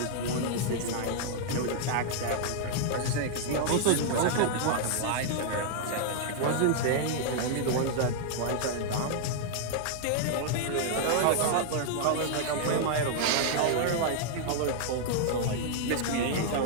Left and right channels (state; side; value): different; both; correlation -0.01